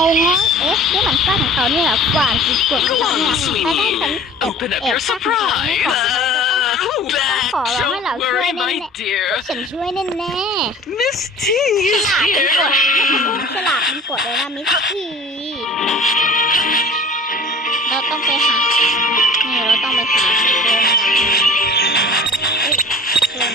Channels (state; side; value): normal; both; correlation 0.43